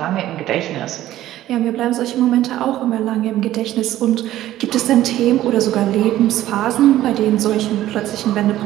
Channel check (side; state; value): left; quieter; 13.9 dB